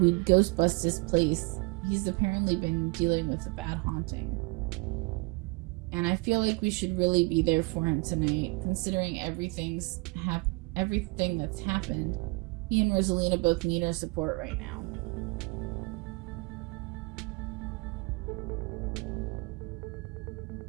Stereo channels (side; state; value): left; quieter; 27.4 dB